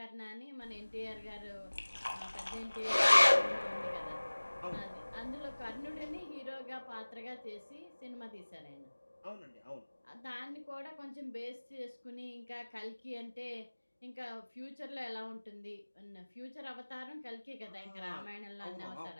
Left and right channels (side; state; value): both; inverted; correlation -1.00